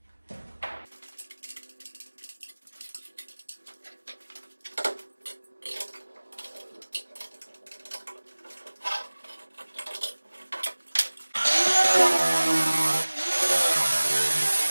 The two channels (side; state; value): both; inverted; correlation -1.00